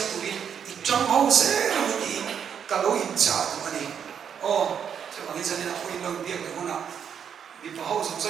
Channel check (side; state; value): left; quieter; 7.9 dB